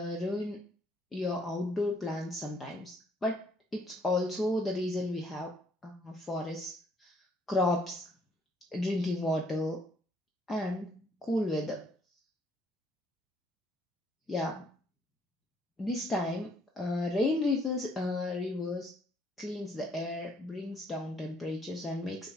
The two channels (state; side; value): normal; both; correlation 0.66